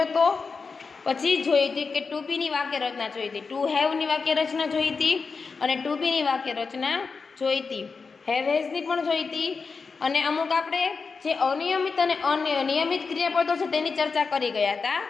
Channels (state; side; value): quieter; right; 4.8 dB